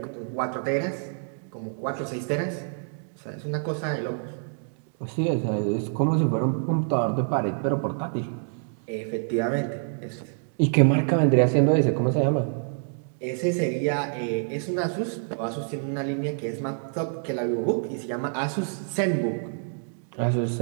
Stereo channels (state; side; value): silent; left; digital silence